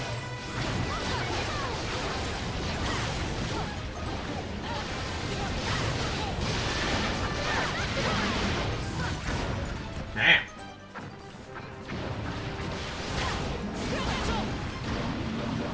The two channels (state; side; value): identical; both; correlation 1.00